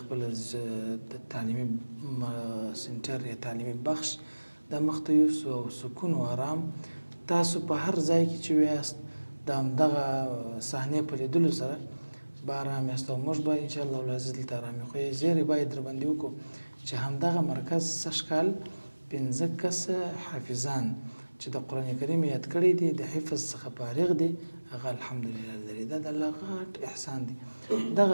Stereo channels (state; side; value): inverted; both; correlation -1.00